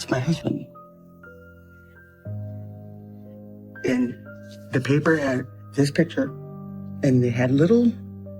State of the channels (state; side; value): identical; both; correlation 1.00